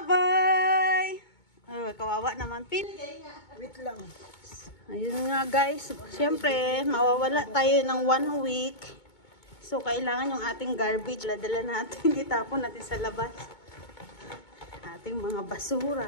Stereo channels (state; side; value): late; right; 2.2 ms